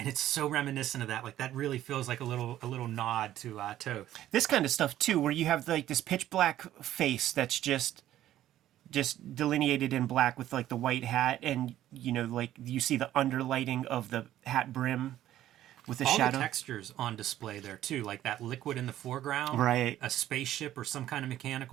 it's so reminiscent of that. Like that really feels like a little nod to Toth. This kind of stuff too, where you have like this pitch black face that's just delineated in black with like the white hat, and you know, like you see the underlighting of the hat brim with the shadow. All the textures on display there too, like that liquid in the foreground, right? A spaceship or some kind of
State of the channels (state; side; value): quieter; left; 12.9 dB